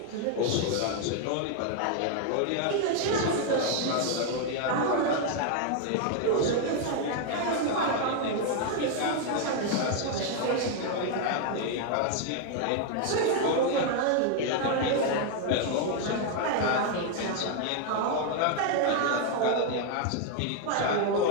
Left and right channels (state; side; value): different; both; correlation 0.00